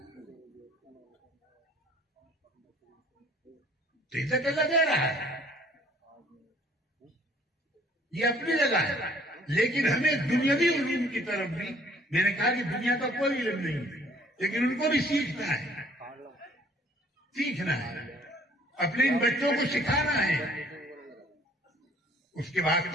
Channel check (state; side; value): normal; both; correlation 0.57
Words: تو عزت اللہ دے رہا ہے، یہ اپنی جگہ ہے. لیکن ہمیں دنیاوی علوم کی طرف بھی، میں نے کہا کہ دنیا کا کوئی علم نہیں لیکن ان کو بھی سیکھنا ہے، اپنے ان بچوں کو سکھانا ہے. اس کے